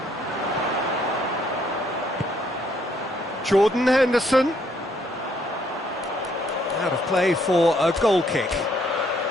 Jordan Henderson. Out of play for a goal kick.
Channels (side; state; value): both; normal; correlation 0.68